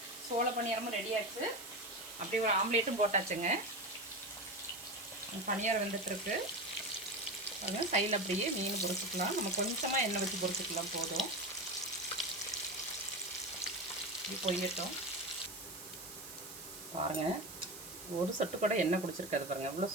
சோள பணியாரமும் ரெடி ஆச்சு. அப்படியே ஒரு ஆம்லேட்டும் போட்டாச்சுங்க. பணியாரம் வெந்துட்டுருக்கு. பாருங்கள் சைடில் அப்படியே மீன் பொரிச்சிக்கலாம். நம்ம கொஞ்சமாக எண்ணெய் வச்சு பொரிச்சிக்கலாம் போதும். இப்படி பொரியட்டும். பாருங்கள் ஒரு சொட்டு கூட எண்ணெய் குடிச்சிருக்காது. பாருங்கள் எவ்வளோ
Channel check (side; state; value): right; noise; hiss, 13 dB below the sound